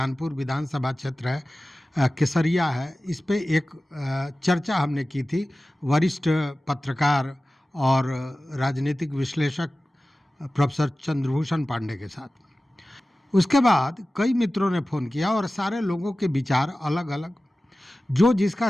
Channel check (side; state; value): both; normal; correlation 0.96